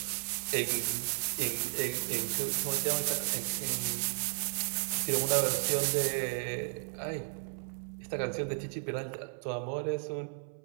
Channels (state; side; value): silent; left; 55 dB below the other